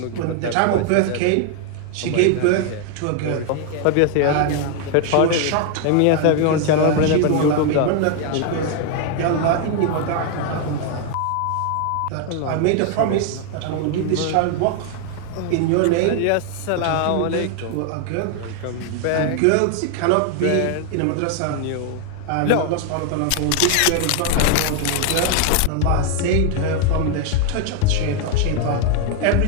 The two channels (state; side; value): different; both; correlation 0.00